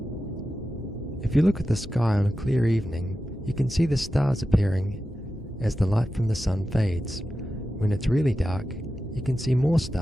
If you look at the sky on a clear evening, you can see the stars appearing as the light from the sun fades. When it's really dark, you can see more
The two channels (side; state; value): both; normal; correlation 0.92